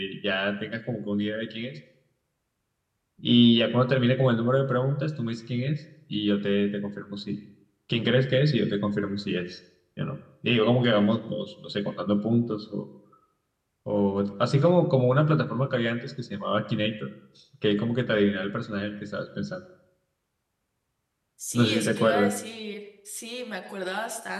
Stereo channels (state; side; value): identical; both; correlation 1.00